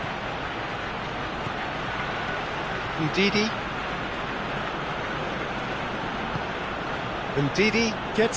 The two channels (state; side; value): identical; both; correlation 1.00